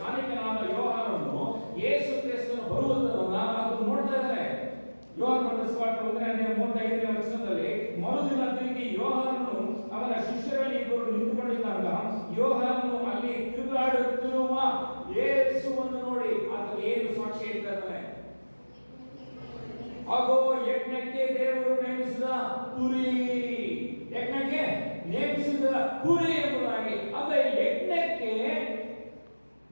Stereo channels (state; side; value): inverted; both; correlation -1.00